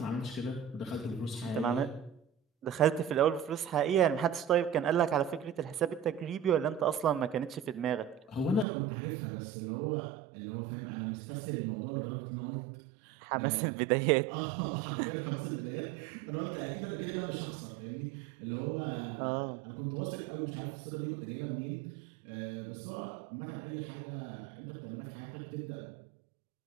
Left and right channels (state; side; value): drops out; left; at 8.7 s